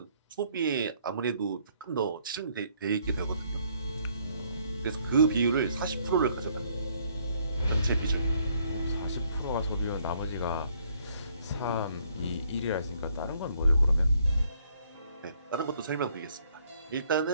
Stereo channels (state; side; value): inverted; both; correlation -0.66